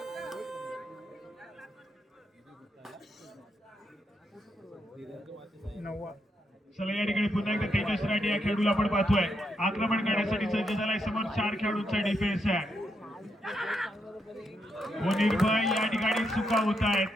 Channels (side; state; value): both; normal; correlation 0.80